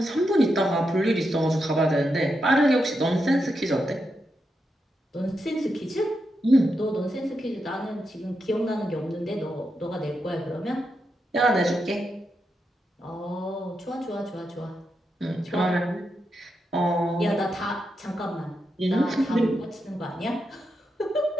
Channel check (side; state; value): both; normal; correlation 0.85